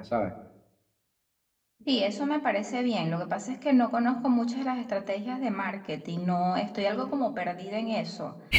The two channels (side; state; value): both; identical; correlation 1.00